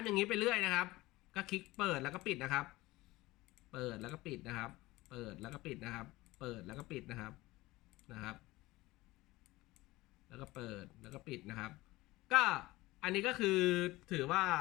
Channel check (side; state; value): right; quieter; 19.4 dB